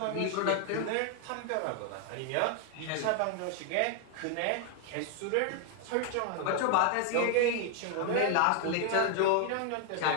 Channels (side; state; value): both; different; correlation 0.00